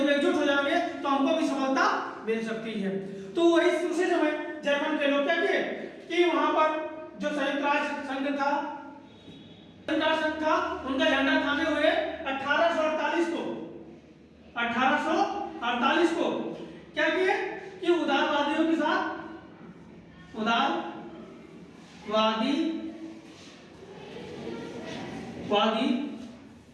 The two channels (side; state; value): both; identical; correlation 1.00